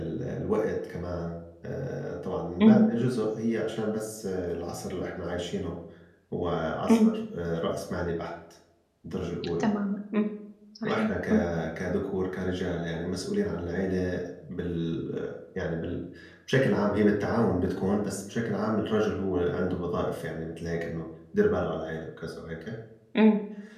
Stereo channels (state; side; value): identical; both; correlation 1.00